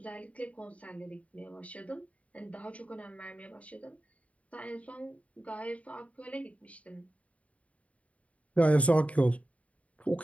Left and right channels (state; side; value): late; right; 0.066 ms